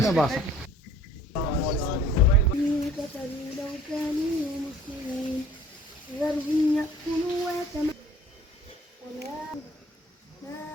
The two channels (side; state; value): both; normal; correlation 0.52